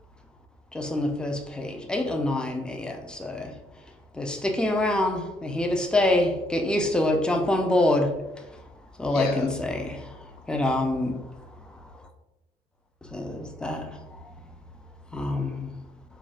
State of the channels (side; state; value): both; normal; correlation 0.74